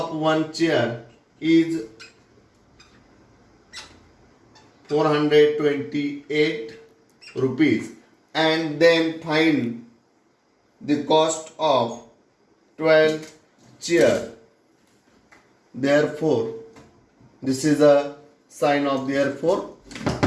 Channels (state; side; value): identical; both; correlation 1.00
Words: one chair is 428 rupees, and then find the cost of 12 chair. Therefore, this is a sign of therefore.